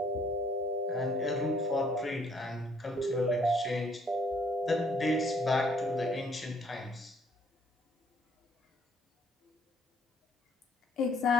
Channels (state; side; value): normal; both; correlation 0.64